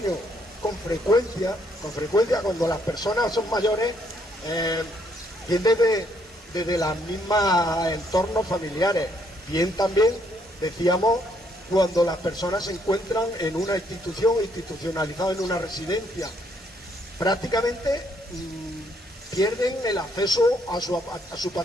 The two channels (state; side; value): normal; both; correlation 0.70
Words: Con frecuencia cuando las personas son mayores, viene desde las mismas entornos familiares. Bien también, decíamos, cuando las personas se encuentran en una institución, institucionalizada en una residencia, prácticamente pierden el acceso a su